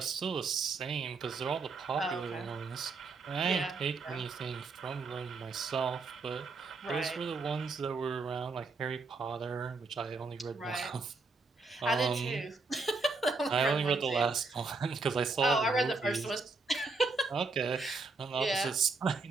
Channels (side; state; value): left; quieter; 3.9 dB